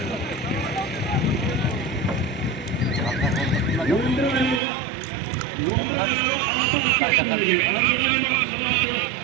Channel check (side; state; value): left; drops out; at 4.6 s